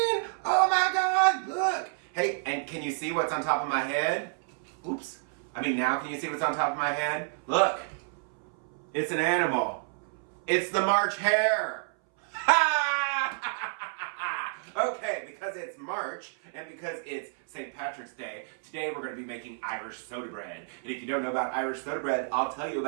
Oh my god, look! Hey, and can you see what's on top of my head? Oops. Now can you see what's on top of my head? Look! It's an animal. It's the March hare! Okay, because it's March and because it's St. Patrick's Day, today we're going to be making Irish soda bread. And if you don't know about Irish soda bread, I'll tell you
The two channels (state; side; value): silent; left; 58 dB below the other